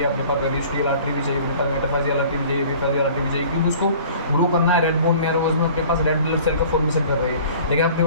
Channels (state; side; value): inverted; both; correlation -0.48